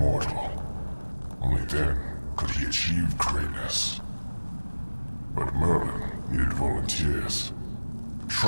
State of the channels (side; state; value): both; inverted; correlation -1.00